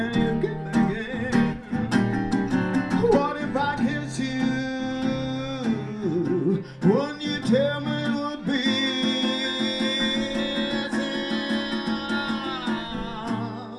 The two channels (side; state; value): both; identical; correlation 1.00